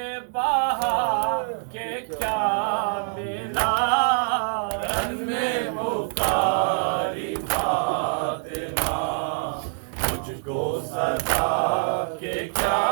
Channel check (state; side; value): silent; left; digital silence